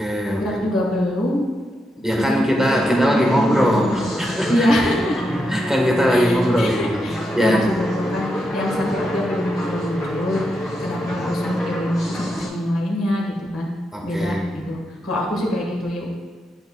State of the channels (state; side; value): normal; both; correlation 0.84